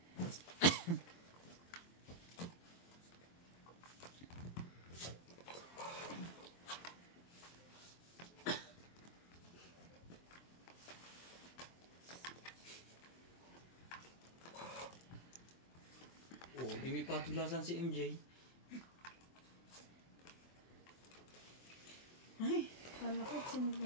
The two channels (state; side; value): late; right; 23 ms